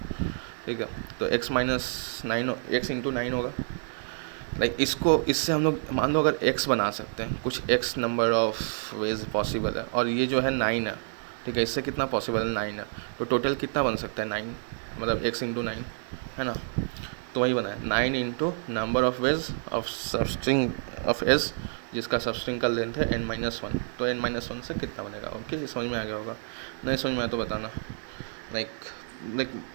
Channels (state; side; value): silent; left; digital silence